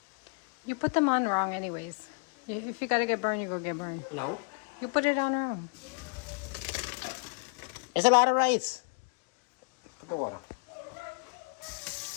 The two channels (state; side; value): quieter; right; 34.6 dB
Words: You put them on wrong anyways. If you gotta get burned, you go get burned. No. You put it on wrong. It's a lot of rice. the water.